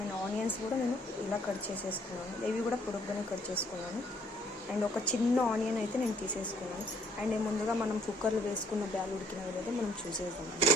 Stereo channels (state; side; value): normal; both; correlation 0.63